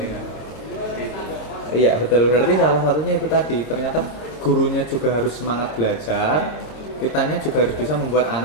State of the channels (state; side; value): late; right; 26 ms